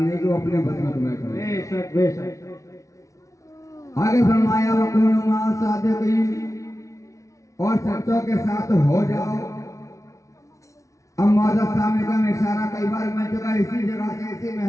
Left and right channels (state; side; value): late; right; 0.15 ms